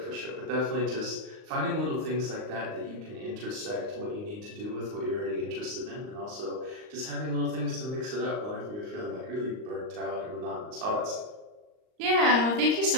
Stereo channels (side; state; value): left; late; 39 ms